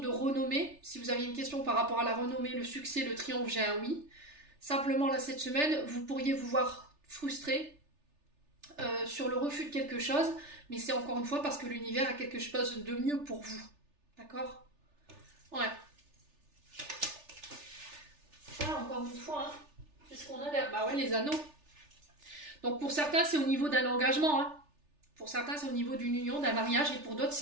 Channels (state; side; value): late; left; 3.4 ms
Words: renommée. Si vous aviez une question par rapport à la renommée, le succès, le triomphe, j'ai un oui. Simplement, là, cette semaine, vous pourriez vous voir frustré sur le refus de quelque chose, mais c'est encore une fois parce que l'univers a quelque chose de mieux pour vous. D'accord? Ouais. Voilà, encore une fois, hein. Qu'est-ce qu'on a là? Bah ouais, les anneaux. Donc, pour certains, c'est au niveau d'un engagement, hein. Pour certains, c'est au niveau d'une union, d'un mariage, et pour d'autres,